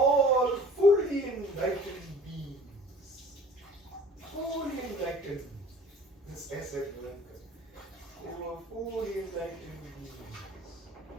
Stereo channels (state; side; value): normal; both; correlation 0.48